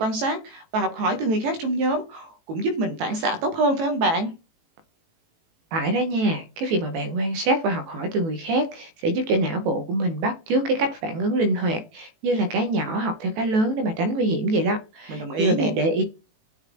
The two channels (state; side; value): late; left; 18 ms